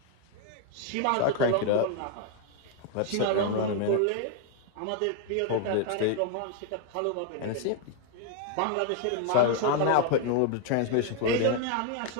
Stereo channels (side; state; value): both; different; correlation 0.00